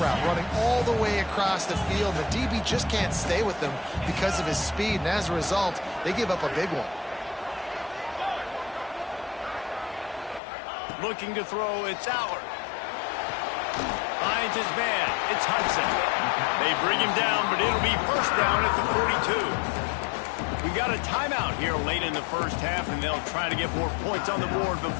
route, running all the way across the field. The DB just can't stay with them because of his speed, and as a result, they give up a big one. Looking to throw, it's Allard. Finds his man, it's Hudson. They bring him down, but it'll be first down at the 42. We got a timeout here late in the first half, and they'll try to get more points on the board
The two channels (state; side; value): drops out; right; at 10.4 s